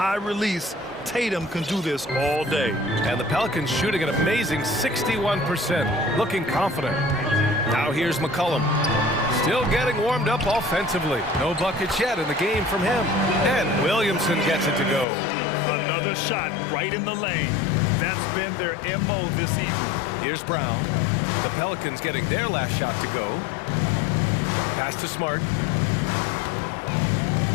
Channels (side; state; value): right; drops out; at 15.1 s